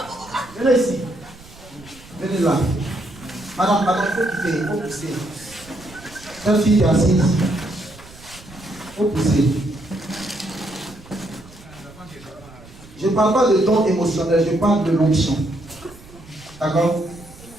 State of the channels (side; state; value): right; noise; rumble, 21 dB below the sound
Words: Venez ici. Venez là. Madame, il faut quitter. Il faut pousser. Cette fille est assise. Il faut pousser. Je ne parle pas de don émotionnel, je parle de l'onction. D'accord?